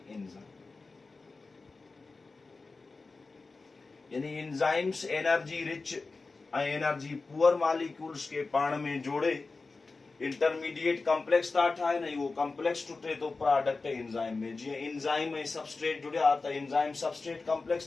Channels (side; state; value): right; quieter; 3.9 dB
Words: यानी एंजाइम्स एनर्जी रिच ऐं एनर्जी पुअर मॉलिक्यूल्स के पाण में जोड़े इंटरमीडिएट कॉम्प्लेक्स था ठाहिनि. उहो कॉम्प्लेक्स टुटे थो प्रोडक्ट एंजाइम में. जीअं एंजाइम ऐं सबस्ट्रेट जुड़िया त एंजाइम सबस्ट्रेट